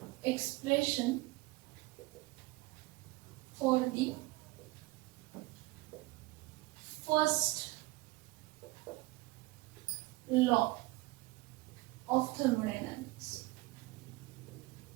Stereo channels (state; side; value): quieter; left; 21.4 dB